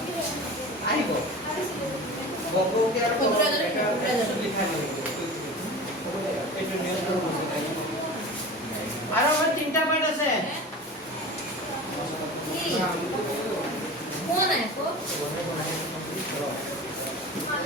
আহিব বংগকে আৰু লিখা এইটো নিয়ন্ত্ৰণ আৰু আমাৰ তিনটা পাৰ্ট আছে কোন আছে কো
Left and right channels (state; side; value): normal; both; correlation 0.34